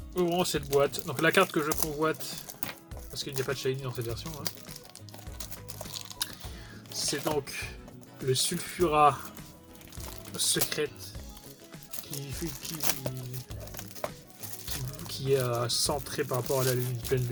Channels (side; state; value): both; identical; correlation 1.00